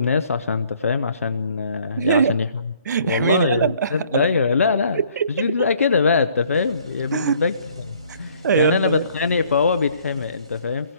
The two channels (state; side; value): inverted; both; correlation -0.60